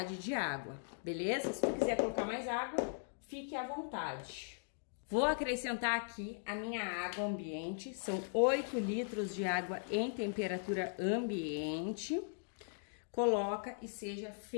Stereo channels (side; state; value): right; silent; digital silence